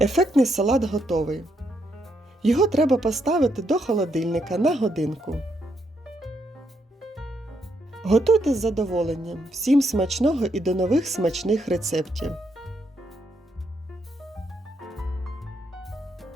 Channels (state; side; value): normal; both; correlation 0.77